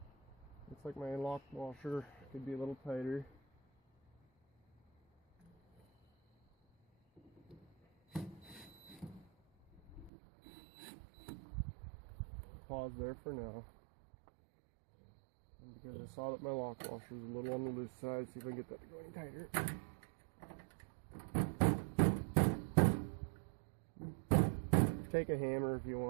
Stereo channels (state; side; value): drops out; left; at 10.1 s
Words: Looks like my lock washer could be a little tighter. Pause there for now. And because I saw that my lock washer was a little on the loose side, see if I can get that to go any tighter. Take a hammer if you